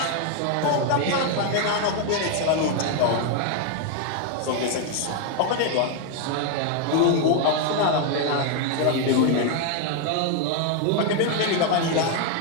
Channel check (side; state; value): both; different; correlation 0.01